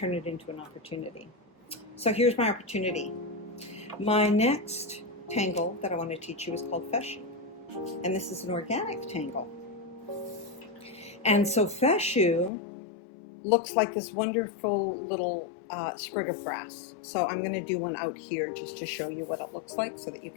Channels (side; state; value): right; drops out; at 12.5 s